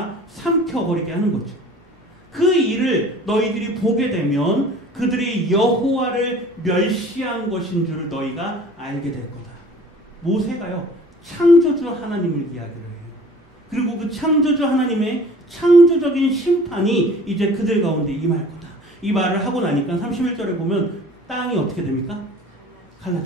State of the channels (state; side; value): normal; both; correlation 0.47